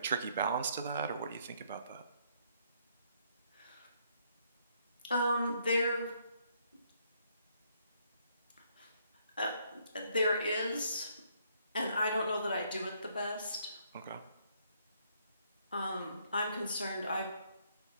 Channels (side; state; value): both; inverted; correlation -0.70